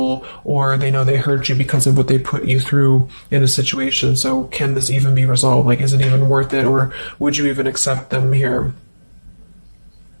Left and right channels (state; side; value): inverted; both; correlation -1.00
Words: Or they know they hurt you because of what they put you through in a situation, so can this even be resolved? Like, is it even worth it, or would you even accept them here?